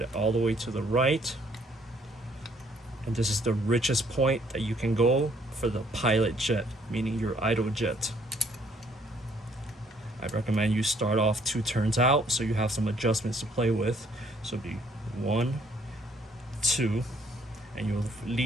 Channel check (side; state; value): both; normal; correlation 0.65